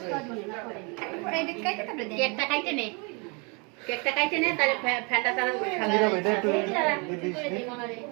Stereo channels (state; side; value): quieter; left; 31.8 dB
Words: কেকটা খাইতে নে, কেকটা খাইতে নে, তাহলে ফ্যানটা চালানো